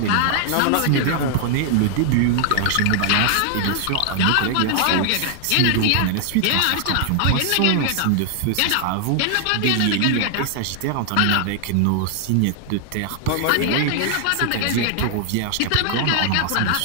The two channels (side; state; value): both; different; correlation 0.00